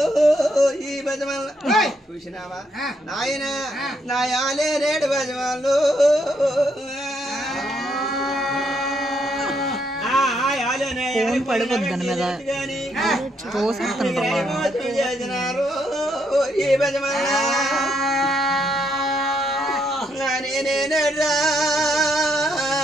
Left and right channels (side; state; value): both; normal; correlation 0.75